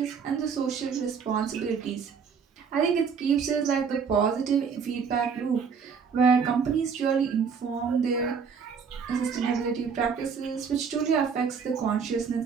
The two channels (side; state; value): left; quieter; 6.2 dB